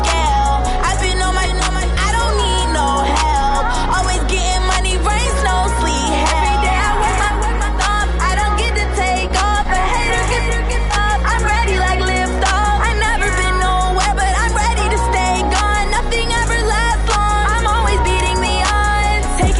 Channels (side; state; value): both; identical; correlation 1.00